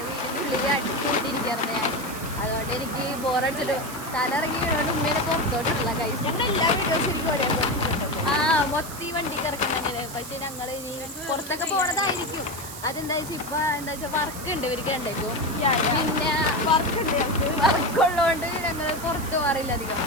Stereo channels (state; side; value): noise; right; hiss, 12 dB below the sound